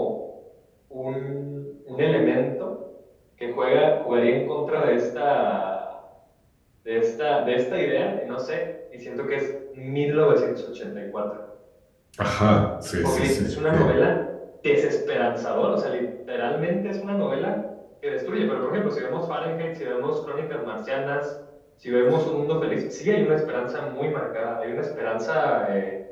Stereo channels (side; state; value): both; identical; correlation 1.00